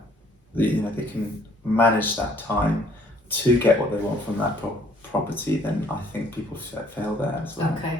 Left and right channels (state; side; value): normal; both; correlation 0.60